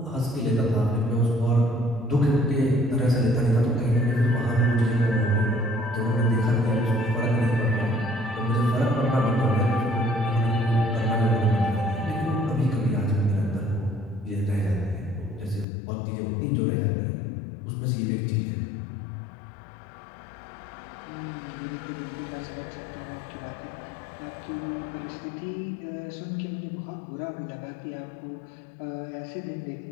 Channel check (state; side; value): drops out; right; at 15.7 s